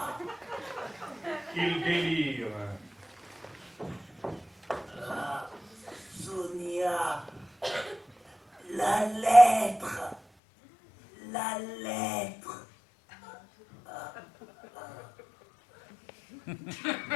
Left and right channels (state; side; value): drops out; right; at 10.2 s